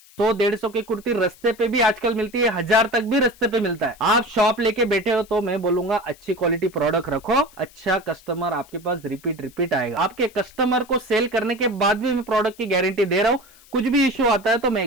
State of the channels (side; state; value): left; noise; hiss, 25 dB below the sound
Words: 100-150 की कुर्ती रास्ते पे भी आजकल मिलती है, 1000 तक भी रास्ते पे मिलता है। आप शॉप लेके बैठे हो तो मैं बोलूंगा अच्छी क्वालिटी प्रोडक्ट रखो, अच्छा कस्टमर आपके पास रिपीट आएगा। आपके कस्टमर को सेल करने के बाद भी मैं प्रोडक्ट की गारंटी दे रहा हूं, कुछ भी इश्यू आता है तो मैं